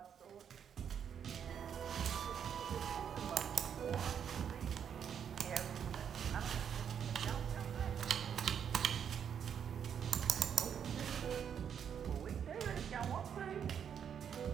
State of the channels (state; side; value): quieter; left; 8.1 dB